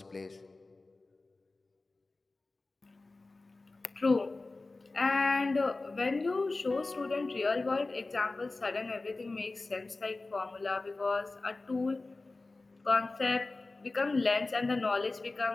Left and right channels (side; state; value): right; quieter; 3.3 dB